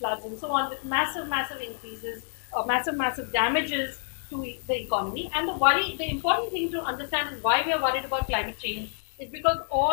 and so on, with massive, massive increases, massive damages to the economy. And the important thing to understand is why we are worried about climate change is because all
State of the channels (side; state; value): right; silent; digital silence